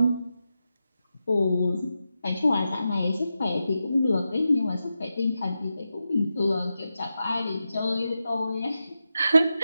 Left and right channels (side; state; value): both; inverted; correlation -0.89